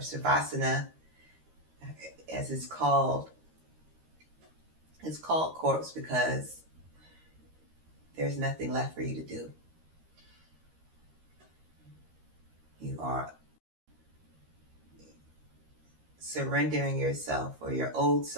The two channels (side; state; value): left; late; 13 ms